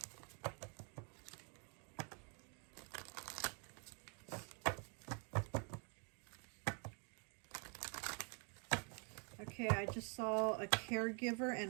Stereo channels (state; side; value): quieter; left; 37.8 dB